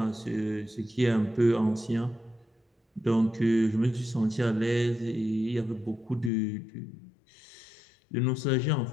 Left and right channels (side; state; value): right; drops out; at 6.3 s